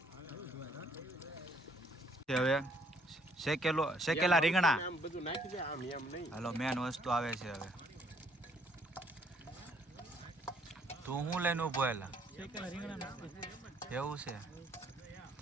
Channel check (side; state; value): both; normal; correlation 0.65